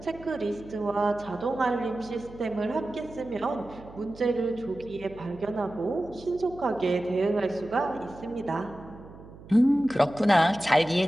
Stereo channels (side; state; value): right; noise; hum, 18 dB below the sound